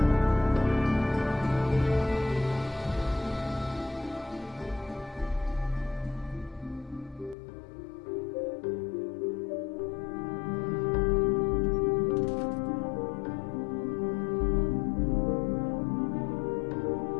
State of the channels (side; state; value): right; drops out; at 7.4 s